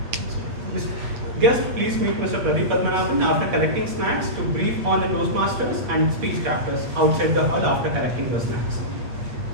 Guests, please meet Mr. Pradeep Padmanabhan after collecting snacks to brief on the Toastmasters and speech crafters outside the hall after collecting the snacks.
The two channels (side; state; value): left; late; 8.4 ms